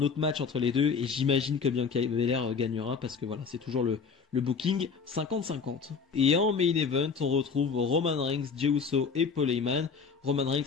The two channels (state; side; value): quieter; right; 5.5 dB